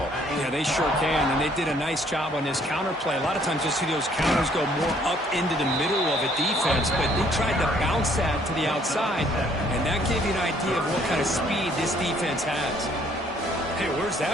Yeah, they sure can, and they did a nice job on this counterplay. A lot of times you'll see those counters go more up into the middle of a defense, but they tried to bounce that to the outside, and that gave you an idea of what kind of speed this defense has. Hey, where's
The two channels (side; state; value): both; normal; correlation 0.63